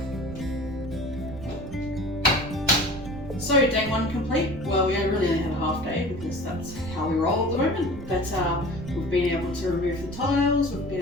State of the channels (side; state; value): right; noise; rumble, 12 dB below the sound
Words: So day one complete. Well, we really only had a half day because that's how we roll at the moment. But we've been able to remove the tiles, we've